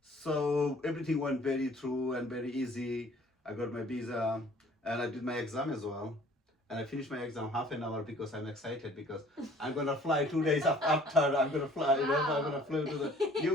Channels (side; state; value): both; normal; correlation 0.54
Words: So everything went very through and very easy. I got my visa and I did my exam as well. And I finished my exam half an hour because I'm excited because I'm gonna fly 2 days after. I'm gonna fly, you know, I'm gonna fly to the